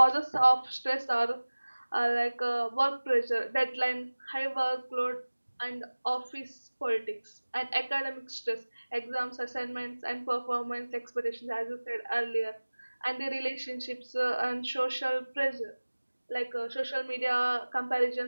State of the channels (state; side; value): inverted; both; correlation -1.00